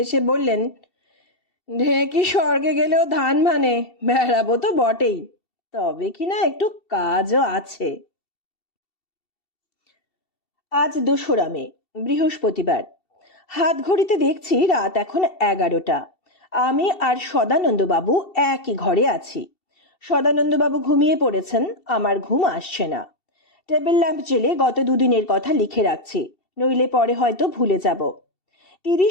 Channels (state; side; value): late; right; 2.7 ms